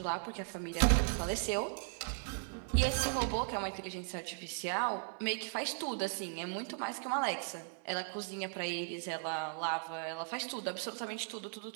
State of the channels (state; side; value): silent; left; 53 dB below the other